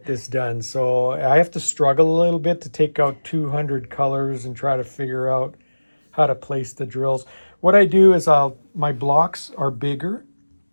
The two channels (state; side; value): inverted; both; correlation -1.00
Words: this done. So I have to struggle a little bit to take out 200 colors and try to figure out how to place the drills. What I do is my blocks are bigger.